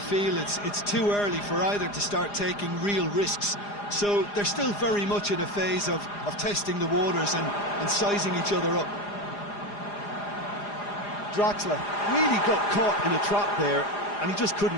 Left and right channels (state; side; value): late; right; 4.9 ms